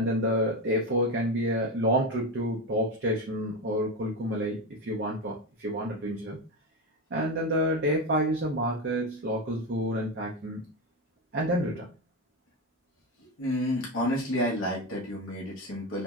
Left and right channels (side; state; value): both; normal; correlation 0.16